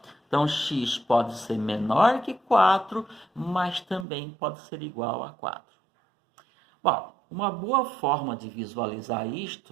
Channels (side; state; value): left; drops out; at 4.0 s